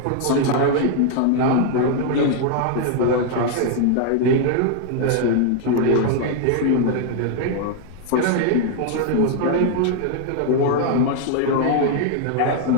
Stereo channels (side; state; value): both; different; correlation 0.00